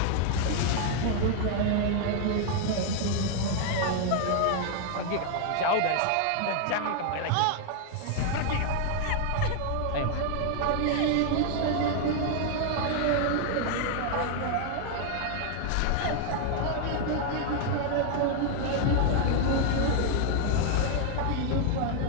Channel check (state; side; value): different; both; correlation 0.00